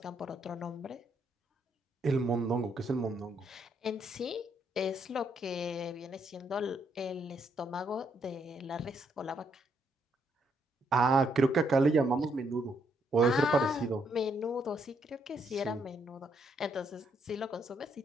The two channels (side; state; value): both; normal; correlation 0.74